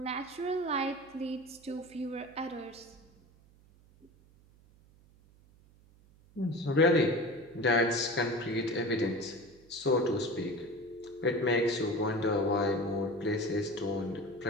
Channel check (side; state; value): right; noise; hum, 27 dB below the sound